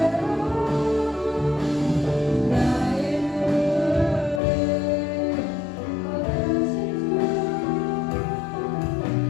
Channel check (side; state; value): right; drops out; at 4.4 s